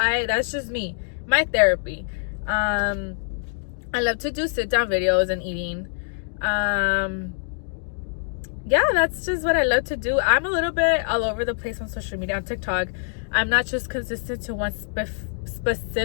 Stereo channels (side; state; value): right; silent; digital silence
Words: just me, my therapy. I love to do sit down videos and eating. yeah, that's just what I love to do. I'm a little bit all over the place on social media, on TikTok. I'm not just consistent to one